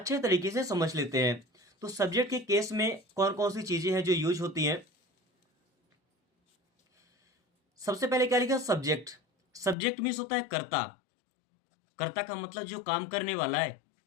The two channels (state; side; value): drops out; right; at 9.8 s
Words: तरीके से समझ लेते हैं। तो सब्जेक्ट के केस में कौन कौन सी चीजें हैं जो यूज होती हैं? सबसे पहले क्या लिखा? सब्जेक्ट। सब्जेक्ट मीन्स होता है कर्ता। कर्ता का मतलब जो काम करने वाला है।